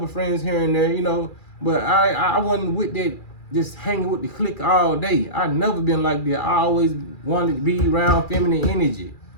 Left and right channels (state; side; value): late; right; 2.4 ms